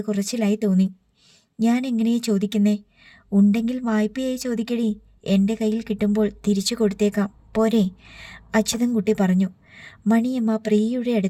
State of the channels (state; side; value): identical; both; correlation 1.00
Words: കുറച്ചിലായി തോന്നി. ഞാൻ എങ്ങനെയാ ചോദിക്കുന്നേ? ഉണ്ടെങ്കിൽ വായ്പയായി ചോദിക്കടി. എൻ്റെ കയ്യിൽ കിട്ടുമ്പോൾ തിരിച്ചു കൊടുത്തേക്കാം, പോരെ? അച്യുതൻകുട്ടി പറഞ്ഞു. മണിയമ്മ പ്രിയയുടെ